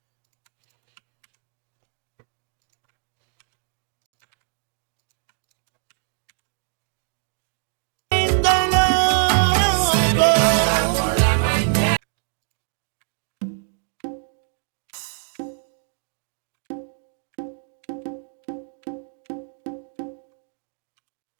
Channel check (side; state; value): left; silent; 62 dB below the other